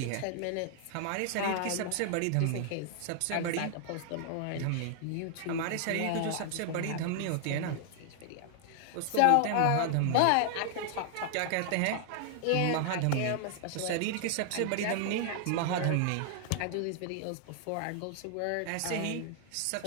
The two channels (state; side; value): different; both; correlation 0.00